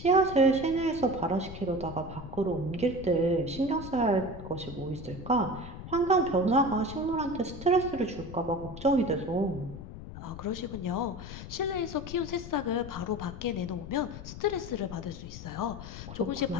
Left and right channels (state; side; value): noise; left; rumble, 11 dB below the sound